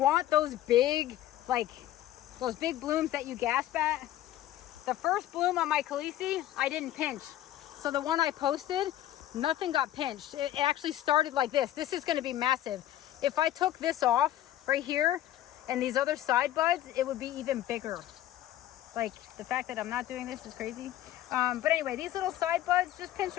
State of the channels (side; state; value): right; quieter; 13.2 dB